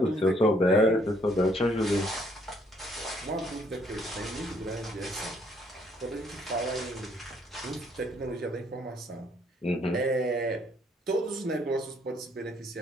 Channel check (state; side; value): normal; both; correlation 0.66